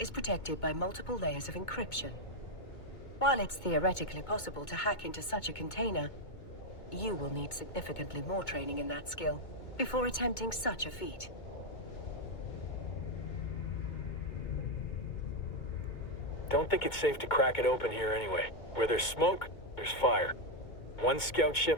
protected by multiple layers of encryption. While it's theoretically possible to hack into such a container, you will need significantly more training in that skill before attempting such a feat. Don't think it's safe to crack it open here anyway. Where there's smoke, there's fire. One scout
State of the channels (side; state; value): right; late; 2.2 ms